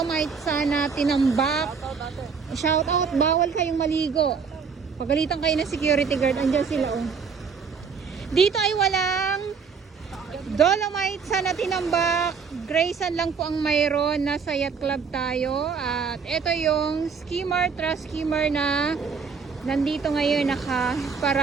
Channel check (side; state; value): left; quieter; 5.8 dB